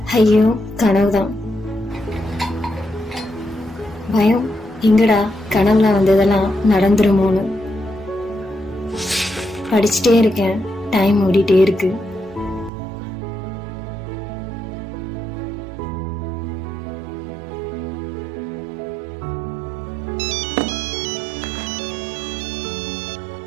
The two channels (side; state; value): left; drops out; at 12.7 s